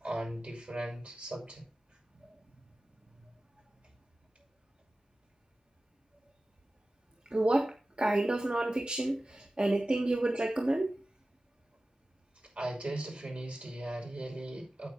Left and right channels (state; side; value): normal; both; correlation 0.96